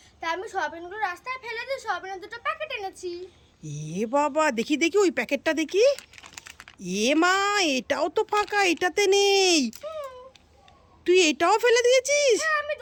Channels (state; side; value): identical; both; correlation 1.00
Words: তাই আমি সোয়াবিনগুলো রাস্তায় ফেলে দিয়ে সোয়াবিনের 2টো প্যাকেট এনেছি। বাবা, দেখি দেখি ওই প্যাকেটটা দেখি। মা, এটাও তো ফাঁকা, এটাতে নেই। তুই এটাও ফেলে দিয়েছিস? হ্যাঁ আমি